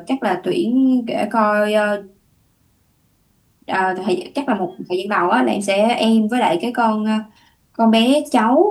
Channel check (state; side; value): identical; both; correlation 1.00